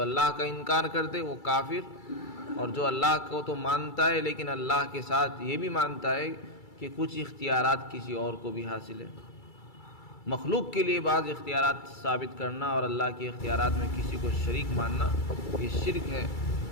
کا انکار کرتے وہ کافر، اور جو اللہ کو تو مانتا ہے لیکن اللہ کے ساتھ یہ بھی مانتا ہے کہ کچھ اختیارات کسی اور کو بھی حاصل ہے. مخلوق کے لیے بعض اختیارات ثابت کرنا اور اللہ کے اختیارات میں کسی کو شریک ماننا یہ شرک ہے.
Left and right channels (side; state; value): right; late; 2.3 ms